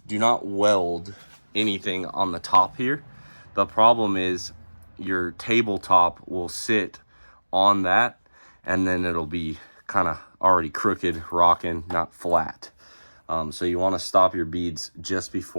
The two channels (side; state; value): both; inverted; correlation -1.00